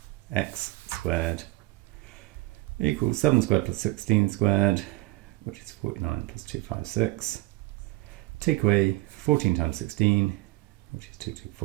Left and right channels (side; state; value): left; quieter; 20.8 dB